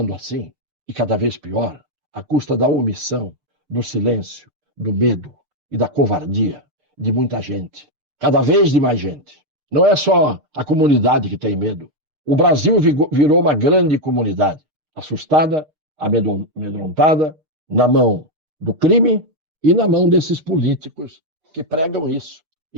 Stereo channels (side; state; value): left; late; 6.6 ms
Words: assim, e cada vez pior, à custa da omissão, do silêncio, do medo e da covardia de muita gente. Cada vez de mais gente. Não é só a comunidade que tem medo. O Brasil virou uma grande comunidade, assustada, amedrontada, na mão do crime e na mão desses políticos que pregam isso.